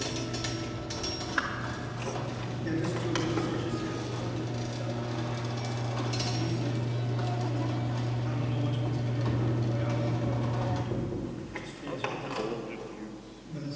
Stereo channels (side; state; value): both; identical; correlation 1.00